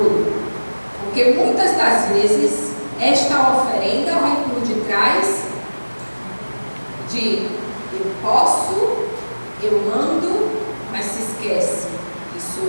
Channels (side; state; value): both; inverted; correlation -1.00